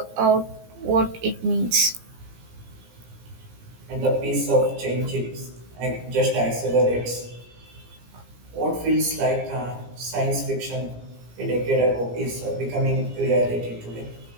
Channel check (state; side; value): late; left; 17 ms